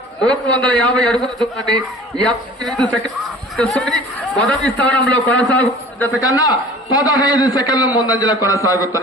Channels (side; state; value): both; normal; correlation 0.45